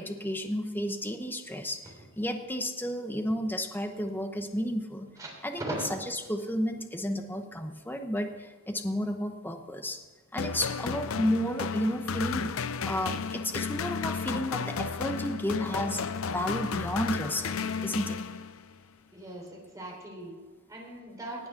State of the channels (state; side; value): normal; both; correlation 0.58